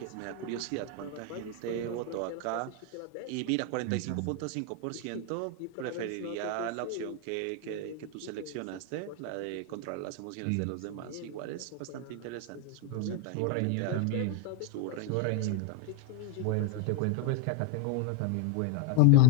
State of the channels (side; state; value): both; different; correlation 0.00